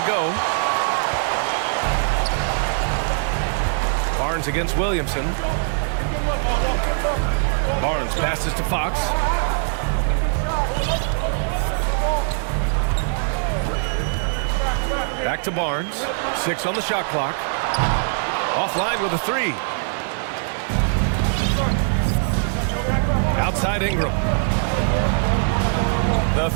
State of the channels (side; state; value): left; silent; 64 dB below the other